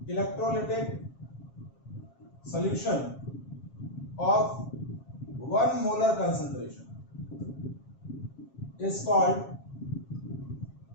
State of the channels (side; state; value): right; late; 7.4 ms